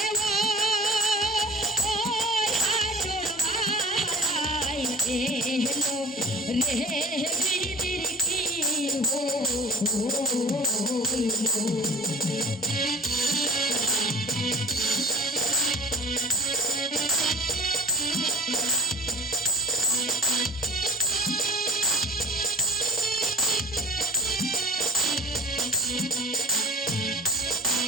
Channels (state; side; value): normal; both; correlation 0.40